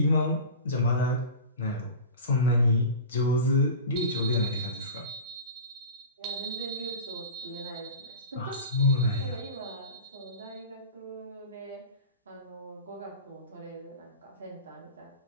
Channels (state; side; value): inverted; both; correlation -0.32